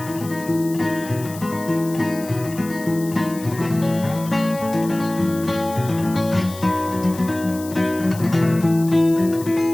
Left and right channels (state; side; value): noise; left; hiss, 16 dB below the sound